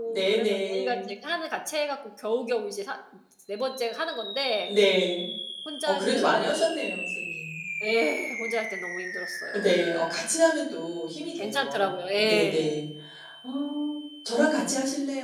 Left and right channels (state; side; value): identical; both; correlation 1.00